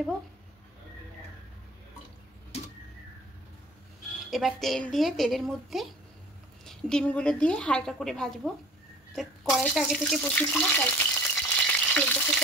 এবার তেল দিয়ে তেলের মধ্যে ডিমগুলো দিয়ে হালকা করে ভাজবো। তো কড়াইটা আগে থেকে বসিয়েছিলাম, তাই তেলটা খুব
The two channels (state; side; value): normal; both; correlation 0.46